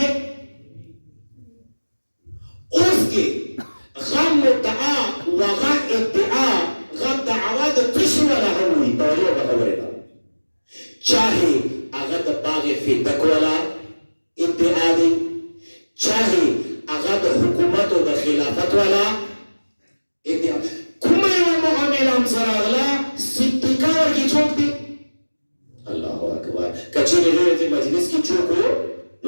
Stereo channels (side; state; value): both; inverted; correlation -1.00